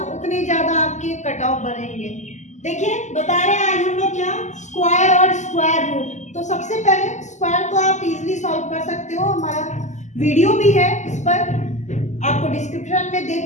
उतने ज्यादा आपके कट ऑफ बढ़ेंगे। देखिए, बता रहे हैं आज हम लोग क्या, स्क्वायर और स्क्वायर रूट। तो सबसे पहले स्क्वायर को आप इजीली सॉल्व कर सकते हो, हमारा वीडियो भी है इस पर, आपको डिस्क्रिप्शन में दे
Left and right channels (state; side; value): late; right; 0.34 ms